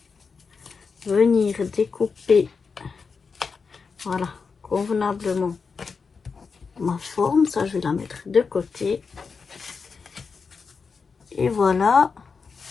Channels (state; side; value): quieter; right; 5.2 dB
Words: venir découper, voilà, convenablement ma forme. Ça, je vais la mettre de côté. Et voilà.